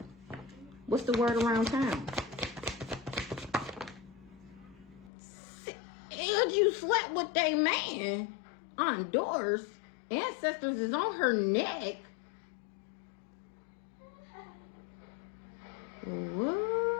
What's the word around town? And you slept with they man on doors. Ancestors is on her neck. What?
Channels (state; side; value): drops out; right; at 5.1 s